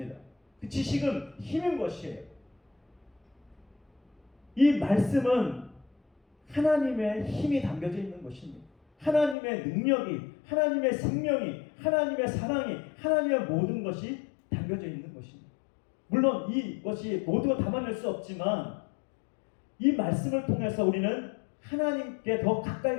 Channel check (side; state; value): right; drops out; at 9.3 s